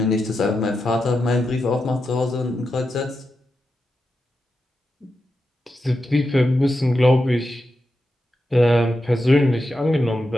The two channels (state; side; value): normal; both; correlation 0.88